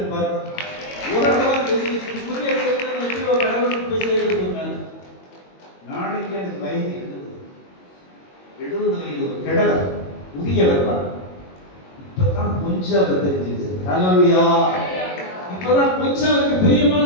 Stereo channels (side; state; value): right; late; 22 ms